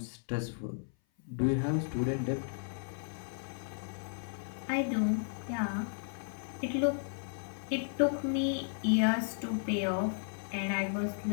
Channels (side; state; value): right; silent; 55 dB below the other